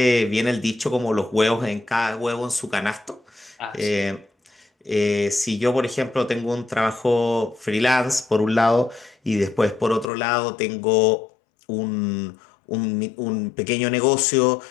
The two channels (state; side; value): drops out; right; at 10.1 s